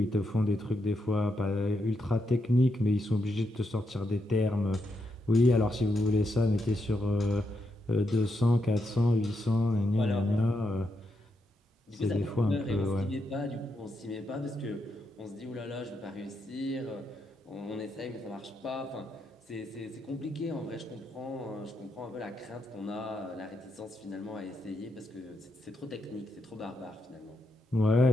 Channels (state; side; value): normal; both; correlation 0.82